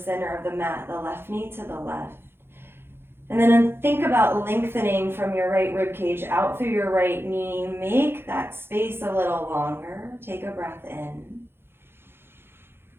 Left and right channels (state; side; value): late; left; 0.11 ms